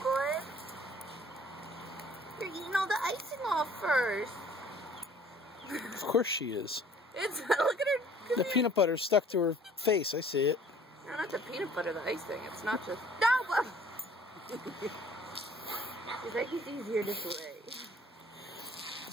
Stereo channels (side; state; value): both; normal; correlation 0.54